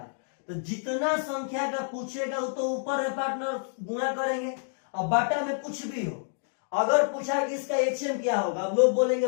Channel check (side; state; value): right; silent; digital silence